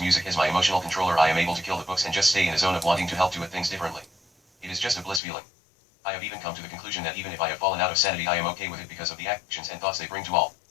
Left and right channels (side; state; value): right; drops out; at 5.2 s